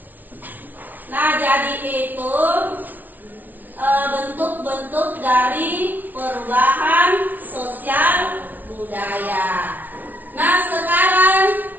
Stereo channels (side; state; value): left; late; 0.081 ms